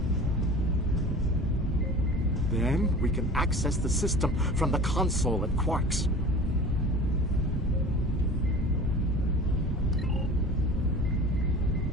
Then we can access the system from the console at Quark's.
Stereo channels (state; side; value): normal; both; correlation 0.39